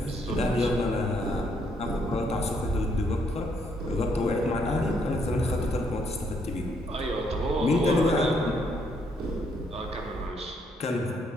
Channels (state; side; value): normal; both; correlation 0.72